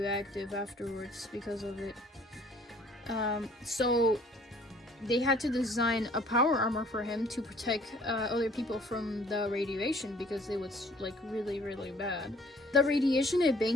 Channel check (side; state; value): both; normal; correlation 0.56